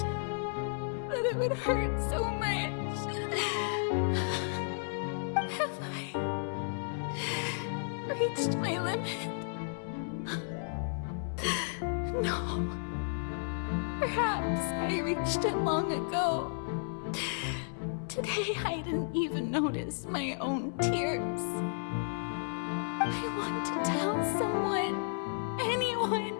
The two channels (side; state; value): right; silent; 56 dB below the other